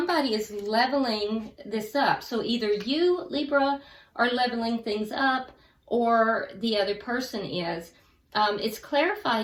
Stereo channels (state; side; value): identical; both; correlation 1.00